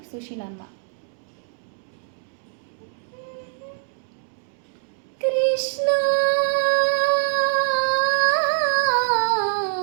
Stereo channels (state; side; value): silent; left; digital silence